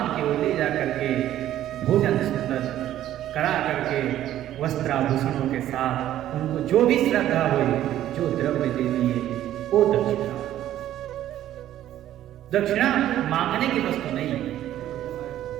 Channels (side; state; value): left; quieter; 12.5 dB